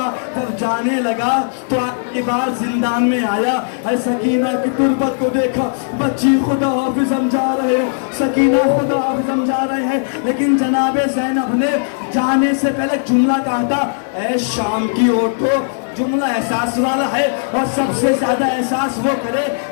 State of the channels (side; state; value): right; silent; 57 dB below the other